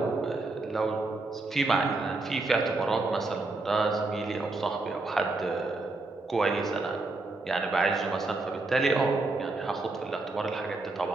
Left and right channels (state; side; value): quieter; left; 3.2 dB